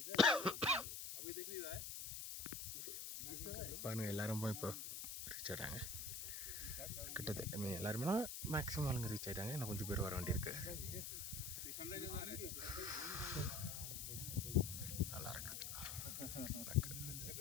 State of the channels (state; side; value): noise; left; hiss, 5 dB below the sound